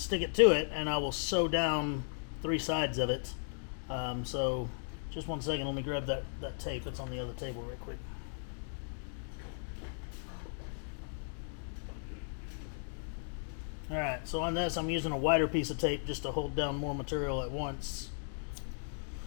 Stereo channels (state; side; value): silent; right; digital silence